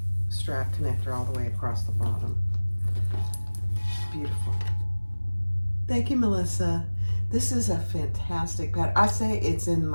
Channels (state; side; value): inverted; both; correlation -1.00